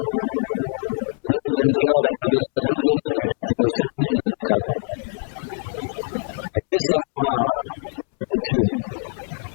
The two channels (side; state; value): right; silent; 63 dB below the other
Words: તો દુર્યોધન કહેવા લાગ્યો, બધા દુર્જન જ બેઠા છે, કોઈ સજ્જન જ નથી દેખાતા. અને એ સભામાં જ્યારે પૂછ્યું